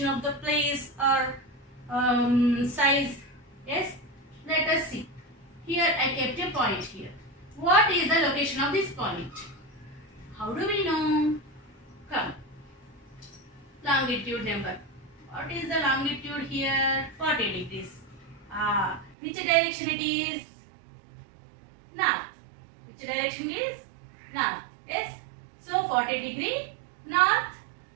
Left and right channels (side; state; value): left; drops out; at 19.2 s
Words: of the place or size. Yes, let us see. Here I kept a point here. What is the location of this point? How do we know? Come. Longitude number. What is the longitude here? 40 degrees. Which direction it is? north. Which direction is? North. Yes. So 40 degree north